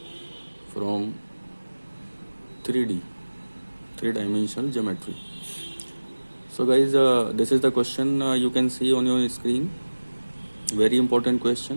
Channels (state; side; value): inverted; both; correlation -1.00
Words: from 3D, three-dimensional geometry. So guys, this is the question you can see on your screen. Very important